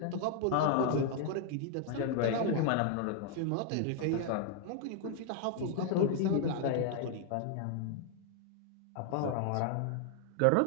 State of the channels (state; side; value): different; both; correlation 0.00